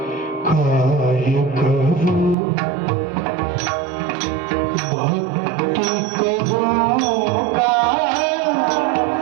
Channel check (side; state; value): left; drops out; at 2.4 s